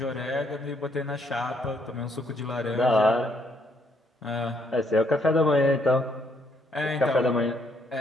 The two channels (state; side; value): normal; both; correlation 0.71